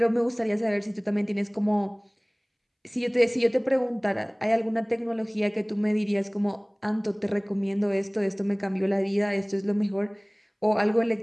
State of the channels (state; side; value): identical; both; correlation 1.00